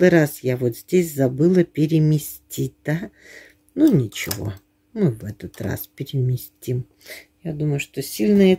раз я вот здесь забыла переместить, да? Ну, ничего, мы в этот раз переместим. Я думаю, что сильно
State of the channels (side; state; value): both; identical; correlation 1.00